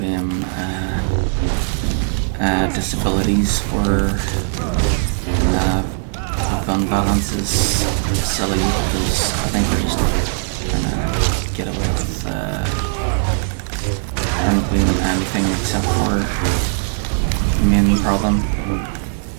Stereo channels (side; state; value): left; silent; 65 dB below the other